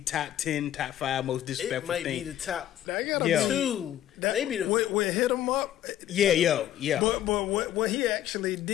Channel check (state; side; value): quieter; right; 12.0 dB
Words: top 10, top 5 most It disrespectful might thing. be the top That gotta Yo. be two. that, Maybe the we hit him up. Yeah. But what he actually